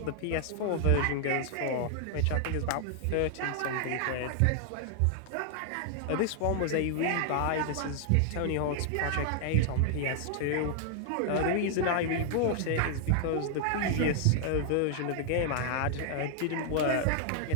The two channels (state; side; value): different; both; correlation 0.00